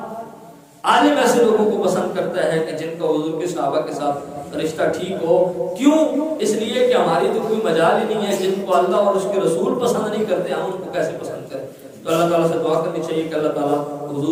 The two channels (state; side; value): identical; both; correlation 1.00